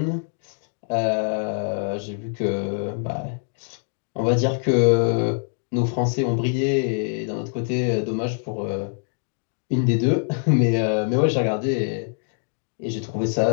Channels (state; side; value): silent; right; 63 dB below the other